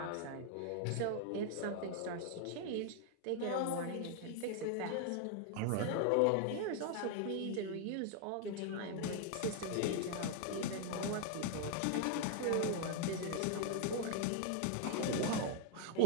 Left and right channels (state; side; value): different; both; correlation 0.00